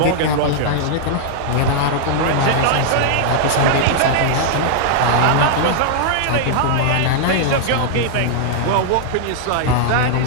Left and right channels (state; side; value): different; both; correlation -0.01